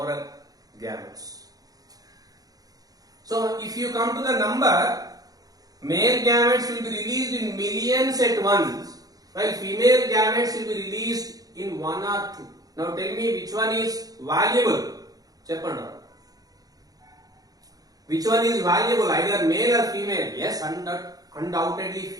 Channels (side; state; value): left; late; 0.18 ms